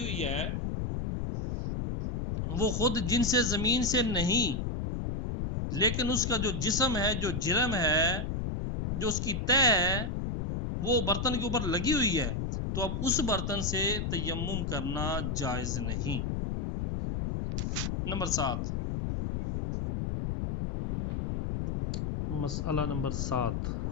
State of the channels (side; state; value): left; noise; rumble, 1 dB below the sound